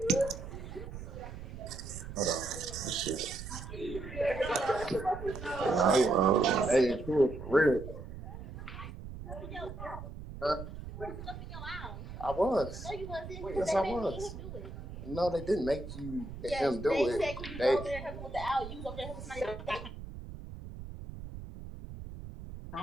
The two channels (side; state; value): right; noise; rumble, 10 dB below the sound